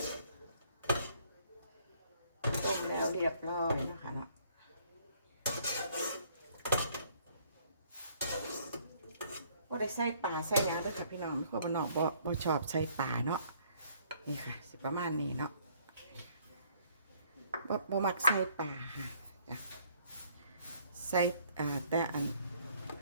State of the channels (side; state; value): both; inverted; correlation -0.63